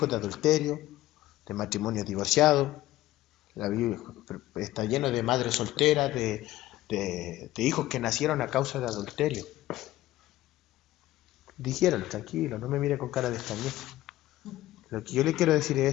de adulterio, de matrimonios divorciados. La Biblia está lleno de madres solteras, de hijos que nacieron a causa de adulterio. Dijeron, tranquilo, no me mire con cara de extrañeza. Lo que yo le quiero decir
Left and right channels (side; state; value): right; quieter; 15.8 dB